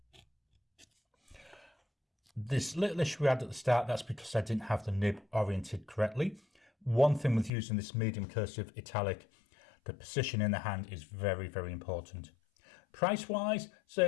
This little issue we had at the start, that's because I didn't have the nib oriented correctly. One thing with using this medium cursive italic, the position in the hand is very, very important. Price wise,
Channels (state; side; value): drops out; right; at 7.5 s